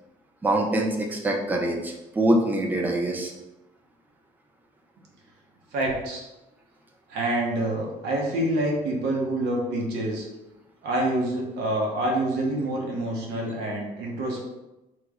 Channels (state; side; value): normal; both; correlation 0.54